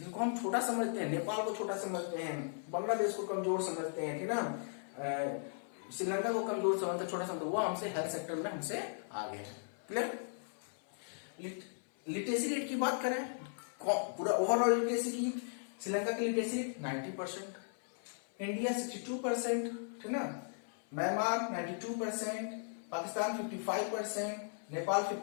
हम छोटा समझते हैं, नेपाल को छोटा समझते हैं, बांग्लादेश को कमजोर समझते हैं, ठीक ना, श्रीलंका को कमजोर समझते, छोटा समझते, वो हमसे हेल्थ सेक्टर में हमसे आगे है। क्लियर। लिटरेसी रेट की बात करें, पूरा ओवरऑल लिटरेसी की, श्रीलंका की लिटरेसी रेट 90%, इंडिया 62%, ठीक ना, म्यांमार 92%, पाकिस्तान 55%, नेपाल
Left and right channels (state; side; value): silent; right; 53 dB below the other